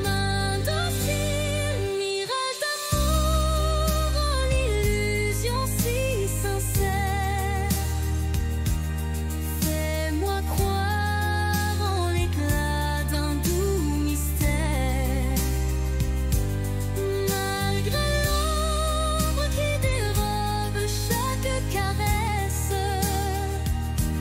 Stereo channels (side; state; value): both; identical; correlation 1.00